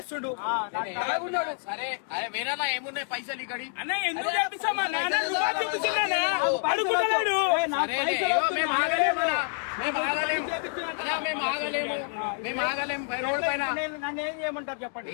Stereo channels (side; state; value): right; silent; 58 dB below the other